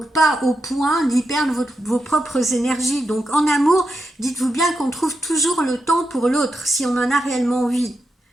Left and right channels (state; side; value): normal; both; correlation 0.86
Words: pas au point d'y perdre vos propres énergies. Donc en amour, dites-vous bien qu'on trouve toujours le temps pour l'autre, si on en a réellement envie.